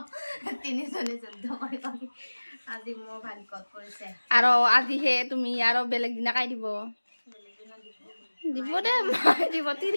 তিনিজনী যুদ্ধ কৰি কৰি আজি মোৰ ভাগ্যত পৰিছে। আৰু আজিহে তুমি আৰু বেলেগ দিনা কাই দিব দিব দে মাই দিব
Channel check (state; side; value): inverted; both; correlation -1.00